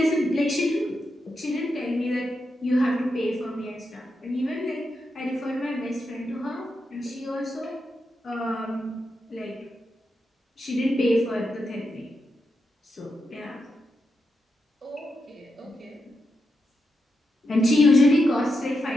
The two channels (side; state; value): both; normal; correlation 0.85